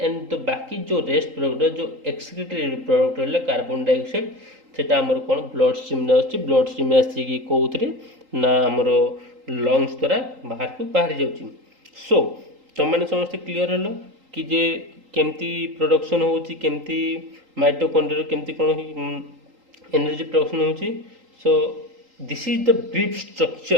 the बाकी जो रेस्ट प्रोडक्ट जो एक्सक्रीटरी प्रोडक्ट रहले कार्बन डाइऑक्साइड सेटा हमर कोन ब्लड स्ट्रीम रे अछि ब्लड स्ट्रीम में आसी कि कोउतरे ना हमरो लंग्स द्वारा बाहर जाउची सो तो माने समस्त क्लियर हलो कि जे केमती प्रोडक्शन होउची केमती माइटोकॉन्ड्रिया केमती कोन एनर्जी प्रोडक्शन होउची so this is the brief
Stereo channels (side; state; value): left; late; 3.8 ms